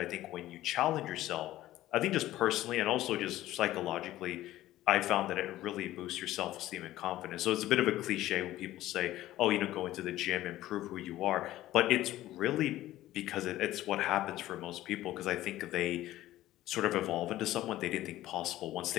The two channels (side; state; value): right; quieter; 15.0 dB